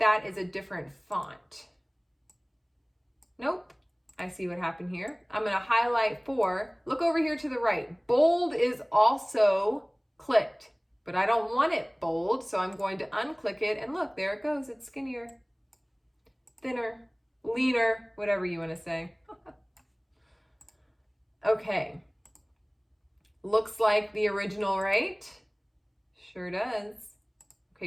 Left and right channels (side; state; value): both; identical; correlation 1.00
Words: is a different font. Nope. I see what happened here. I'm going to highlight for. Look over here to the right. Bold is also clicked, but I don't want it bold. So I'm going to unclick it and look, there it goes. It's skinnier, thinner, leaner, whatever you want to say. Okay, looks like the original, right? Sure does.